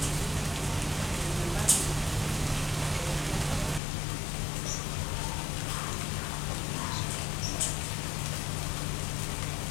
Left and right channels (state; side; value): drops out; right; at 3.8 s